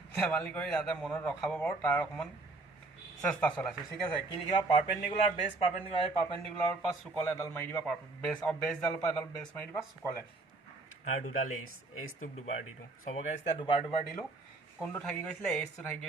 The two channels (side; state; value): left; quieter; 3.3 dB